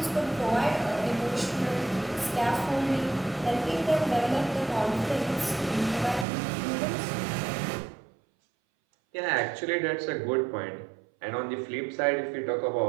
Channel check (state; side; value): drops out; left; at 6.2 s